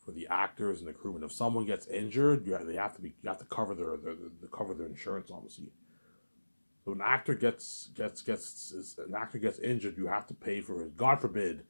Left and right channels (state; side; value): inverted; both; correlation -1.00